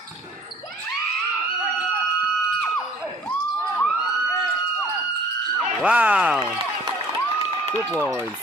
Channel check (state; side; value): normal; both; correlation 0.52